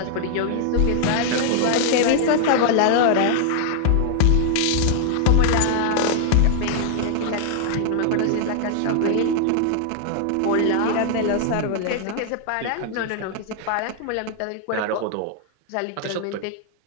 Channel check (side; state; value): both; different; correlation 0.00